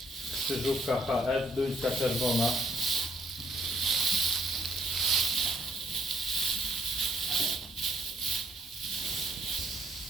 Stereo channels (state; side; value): normal; both; correlation 0.67